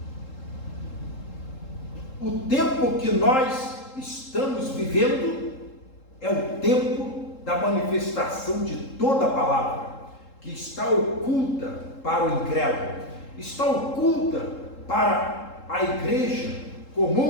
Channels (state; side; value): late; right; 3.7 ms